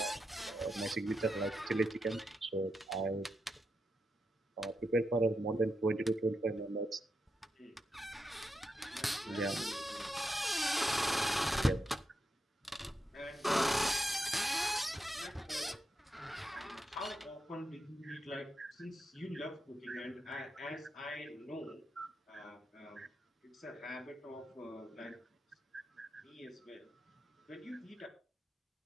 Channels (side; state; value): both; normal; correlation 0.85